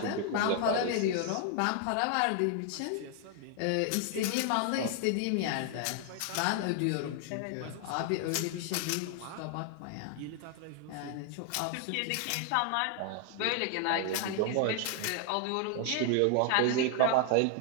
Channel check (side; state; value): both; different; correlation 0.00